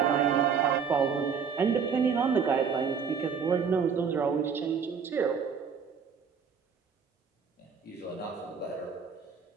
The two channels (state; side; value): quieter; left; 6.4 dB